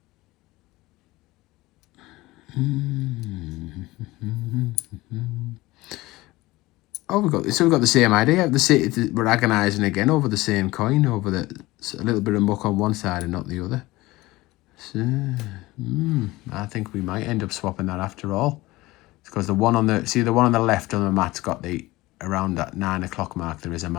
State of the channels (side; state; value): right; quieter; 19.5 dB